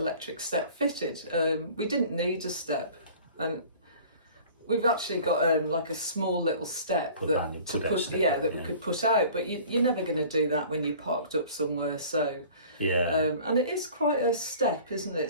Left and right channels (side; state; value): both; inverted; correlation -0.46